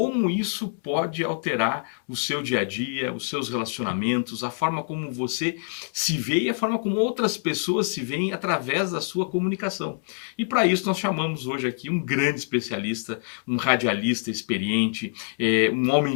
isso pode alterar o seu dia a dia, os seus relacionamentos, a forma como você se vê e a forma como outras pessoas se veem através da sua comunicação. E para isso nós chamamos hoje aqui um grande especialista, um radialista experiente, um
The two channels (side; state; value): right; silent; 61 dB below the other